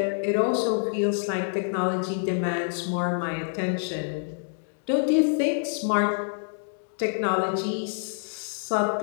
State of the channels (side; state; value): right; silent; digital silence